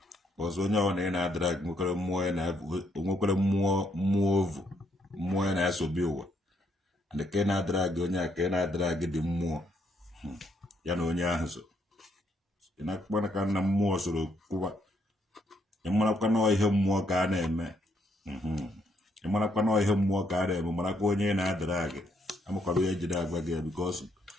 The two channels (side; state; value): both; normal; correlation 0.74